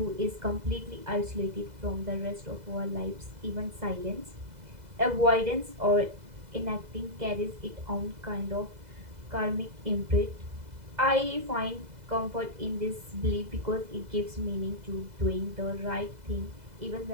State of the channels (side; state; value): left; late; 2.0 ms